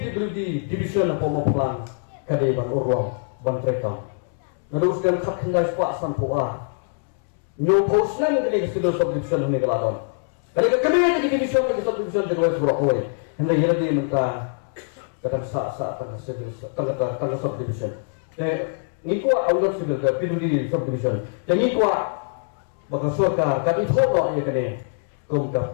division pemupuhan kadai bang urang bang trekam. Meneruskan kat hindai sepak sampurah. No posnan kini sudah subdivision ini kelaran. Kalau kami ini division subdivision jadi wes berapa? Hindai jadi dia minta kata sah kata subdivision. Ni kuat orang sudah ke PWD subdivision. Jadi kuat bakal suaka kami thok ya kene kum ka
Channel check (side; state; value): right; silent; 63 dB below the other